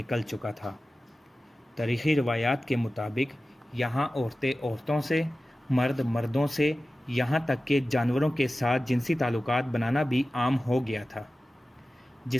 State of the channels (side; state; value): both; normal; correlation 0.95